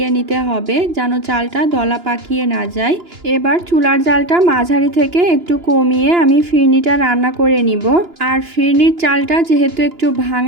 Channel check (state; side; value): late; left; 2.9 ms